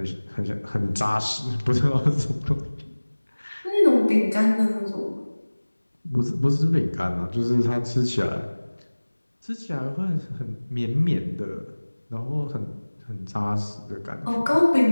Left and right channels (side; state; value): both; inverted; correlation -1.00